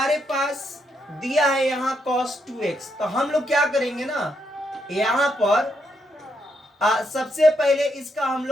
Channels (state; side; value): normal; both; correlation 0.78